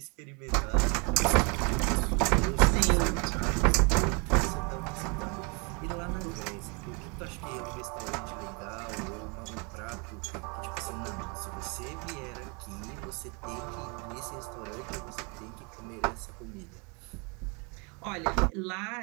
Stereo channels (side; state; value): left; quieter; 32.1 dB